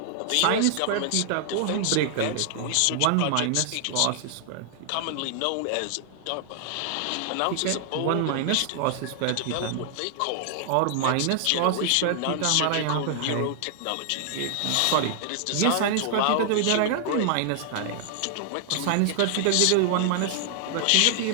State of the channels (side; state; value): both; different; correlation 0.00